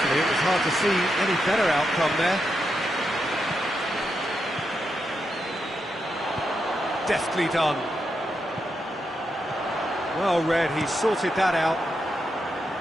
it was hard to see any better outcome there. Deftly done. Well read, he sorted that out.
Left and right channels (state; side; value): normal; both; correlation 0.84